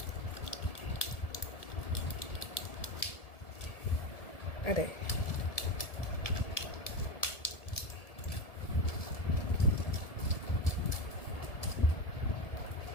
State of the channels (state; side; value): late; right; 1.7 ms